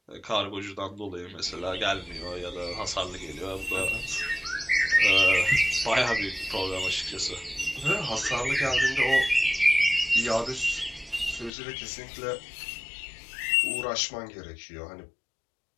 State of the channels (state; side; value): drops out; right; at 11.5 s